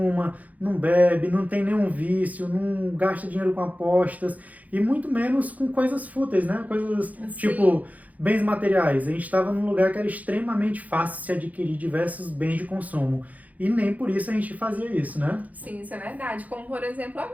não bebe, não tem nenhum vício, não gasta dinheiro com apostas e muito menos com coisas fúteis, né? Coisas tipo bens materiais. A gente estava num lugar que era extremamente fácil se adquirir diversos bens de consumo. E nem por isso a gente fazia isso, né? Sim, isso é verdade. Como, por exemplo,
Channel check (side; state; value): left; late; 0.076 ms